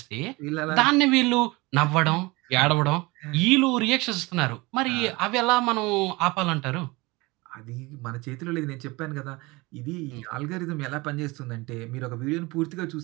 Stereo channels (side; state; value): left; quieter; 23.4 dB